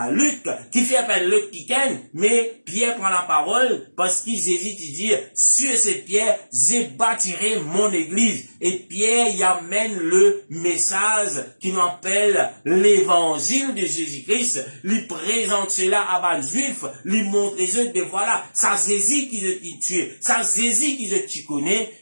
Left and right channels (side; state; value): both; inverted; correlation -1.00